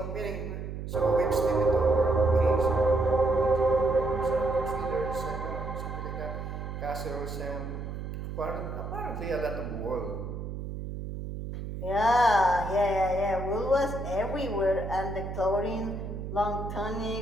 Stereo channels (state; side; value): noise; right; hum, 7 dB below the sound